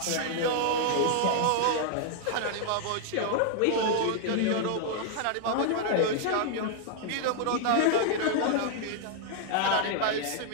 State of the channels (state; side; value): different; both; correlation 0.00